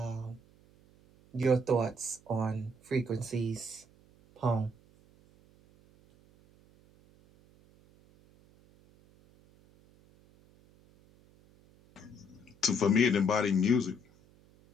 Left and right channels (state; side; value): noise; right; hum, 28 dB below the sound